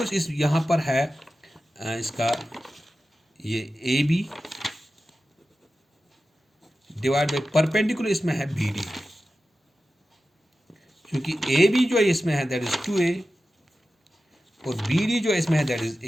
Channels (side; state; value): both; normal; correlation 0.93